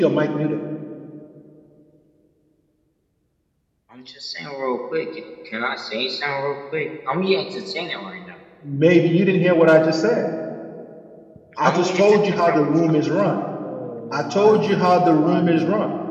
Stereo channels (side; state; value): both; identical; correlation 1.00